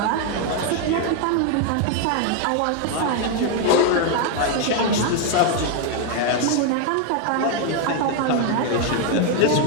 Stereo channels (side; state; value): both; different; correlation 0.01